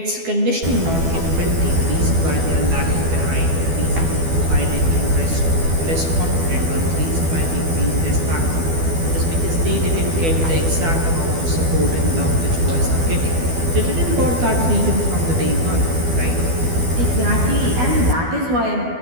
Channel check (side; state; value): left; late; 12 ms